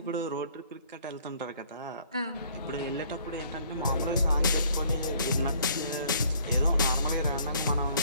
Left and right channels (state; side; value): inverted; both; correlation -0.60